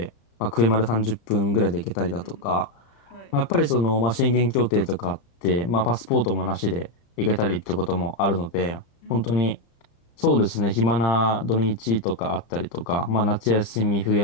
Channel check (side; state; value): right; late; 35 ms